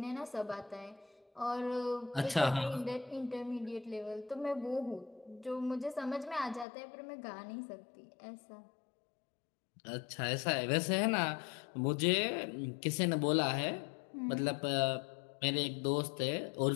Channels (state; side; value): drops out; right; at 6.7 s